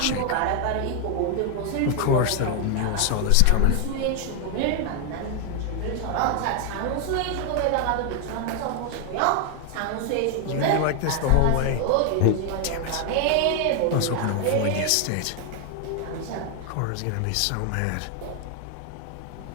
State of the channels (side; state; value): both; different; correlation 0.00